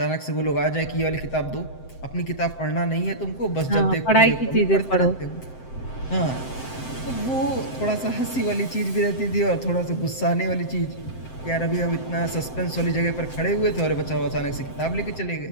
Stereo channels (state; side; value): late; right; 7.8 ms